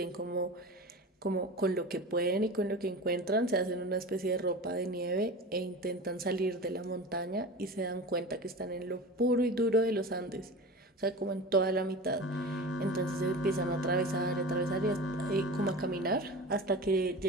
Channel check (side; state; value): both; normal; correlation 0.32